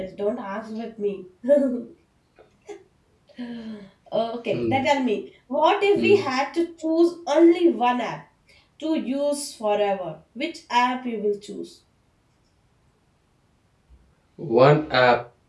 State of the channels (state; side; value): identical; both; correlation 1.00